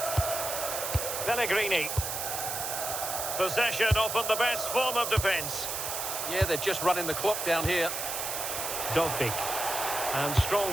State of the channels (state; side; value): noise; right; hiss, 3 dB below the sound